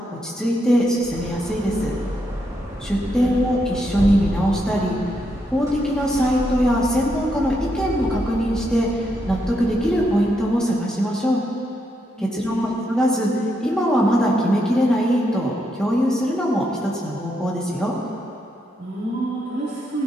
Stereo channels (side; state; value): both; normal; correlation 0.80